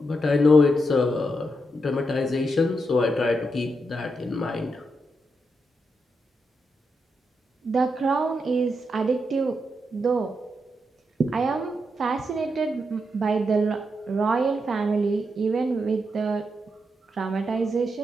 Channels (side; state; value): both; normal; correlation 0.83